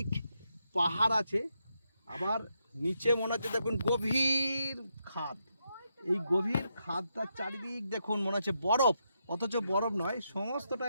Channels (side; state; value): both; inverted; correlation -0.82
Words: পাহাড় আছে, আবার নিচে মনে হচ্ছে দেখুন গভীর খাদ। এই গভীর খাদটার চারিদিক দেখুন মনে হচ্ছে বরফ, অথচ বরফ নয়, সমস্তটা